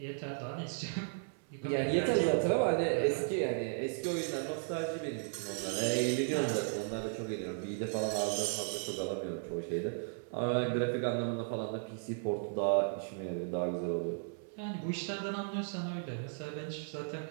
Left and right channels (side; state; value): left; silent; 54 dB below the other